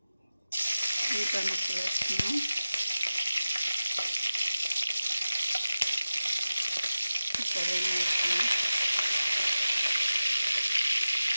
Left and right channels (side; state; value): both; inverted; correlation -0.94